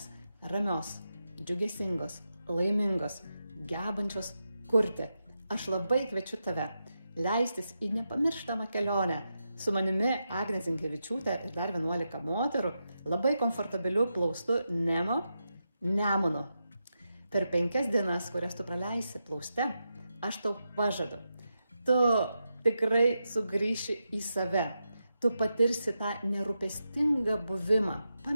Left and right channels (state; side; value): inverted; both; correlation -0.87